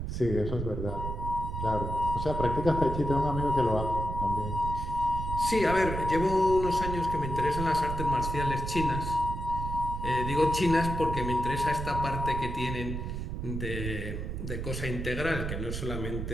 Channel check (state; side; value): noise; right; rumble, 4 dB below the sound